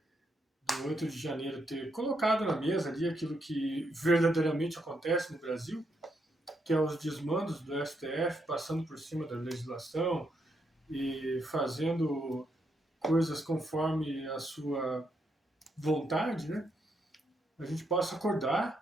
do 8 de janeiro ter colocado na mesa ali aquilo que verdadeiramente acontece no Brasil, que é os desmandos do STF passando por cima da legislação e fazendo coisas conforme a sua vontade, né? A gente possa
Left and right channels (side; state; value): both; normal; correlation 0.79